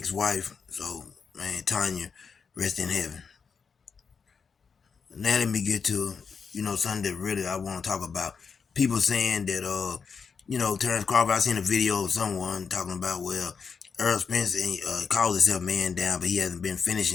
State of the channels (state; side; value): quieter; right; 5.8 dB